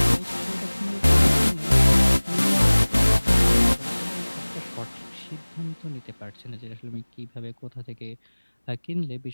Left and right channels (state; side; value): inverted; both; correlation -1.00